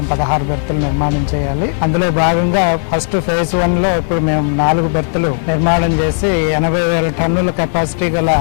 16 బెర్తులు నిర్మాణం చేయాలి. అందులో భాగంగా ఫస్ట్ ఫేజ్ 1 లో ఇప్పుడు మేము 4 బెర్తులు నిర్మాణం చేసి 80,000 టన్నుల కెపాసిటీ గల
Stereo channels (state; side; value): silent; right; digital silence